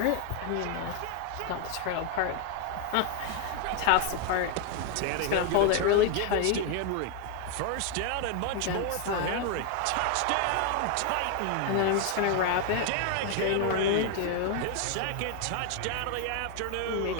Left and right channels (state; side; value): different; both; correlation 0.01